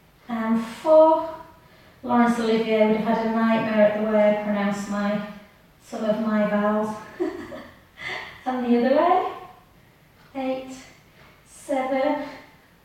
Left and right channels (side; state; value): both; identical; correlation 1.00